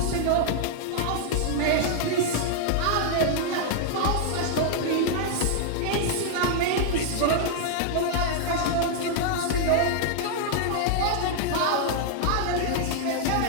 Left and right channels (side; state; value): both; different; correlation -0.01